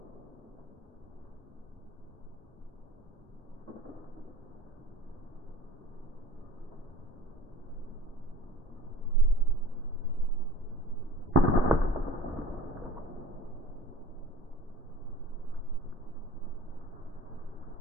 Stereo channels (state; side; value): normal; both; correlation 0.43